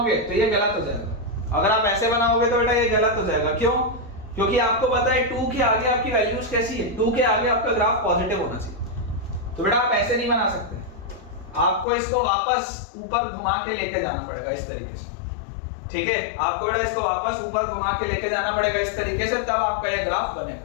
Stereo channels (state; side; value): drops out; right; at 11.9 s